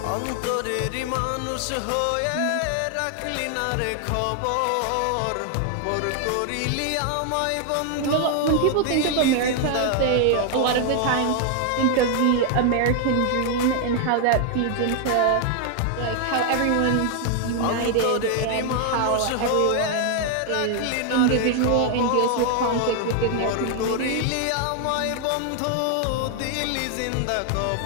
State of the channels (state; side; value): different; both; correlation 0.00